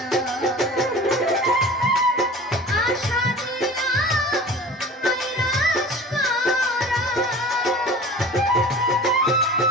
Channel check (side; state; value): both; normal; correlation 0.39